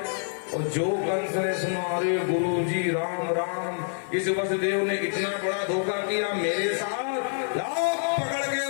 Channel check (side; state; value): right; silent; 55 dB below the other